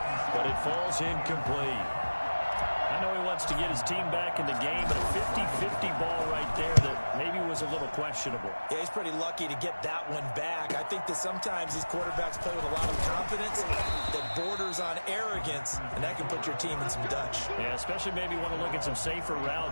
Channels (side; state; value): both; inverted; correlation -1.00